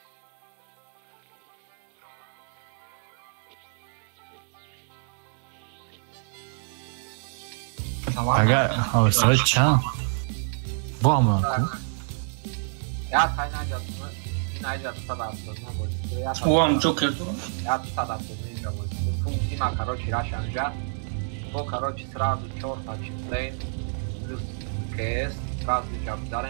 اگر حوصله چند با هم کو ya kaynayacağını sadafını o am çok kötü ya sadafını zaman funksima короче рашанжа то короче сразу чёрта числей плюс кс сразу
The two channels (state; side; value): silent; left; digital silence